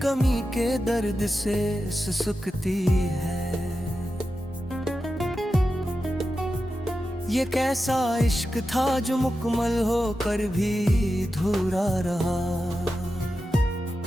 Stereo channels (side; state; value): both; normal; correlation 0.91